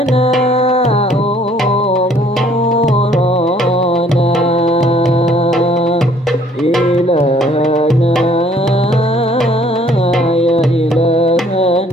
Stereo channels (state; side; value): normal; both; correlation 0.59